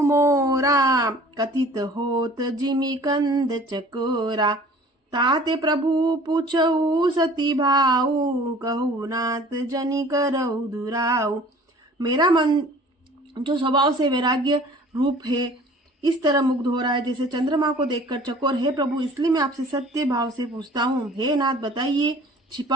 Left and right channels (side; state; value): both; normal; correlation 0.48